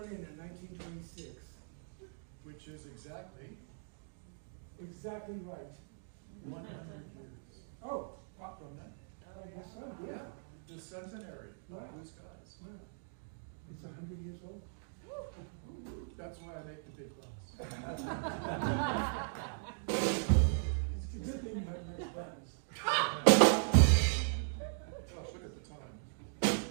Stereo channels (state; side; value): silent; left; digital silence